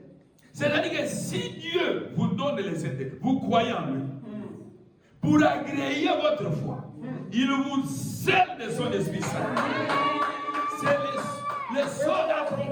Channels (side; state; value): both; identical; correlation 1.00